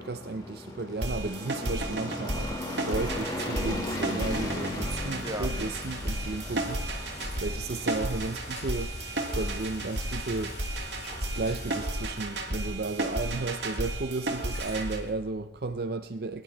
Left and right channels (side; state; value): both; normal; correlation 0.42